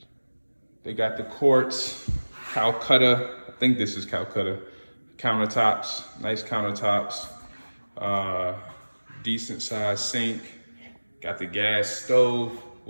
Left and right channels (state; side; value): inverted; both; correlation -1.00